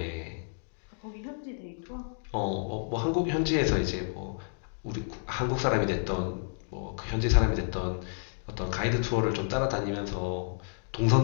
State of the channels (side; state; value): right; silent; digital silence